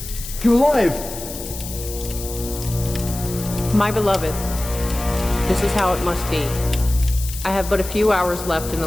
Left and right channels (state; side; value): noise; left; hiss, 10 dB below the sound